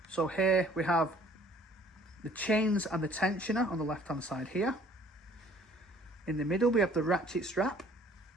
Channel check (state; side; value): normal; both; correlation 0.56